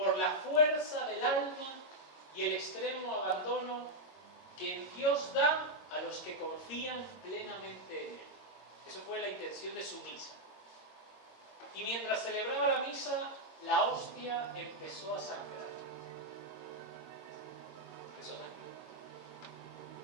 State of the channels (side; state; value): right; late; 22 ms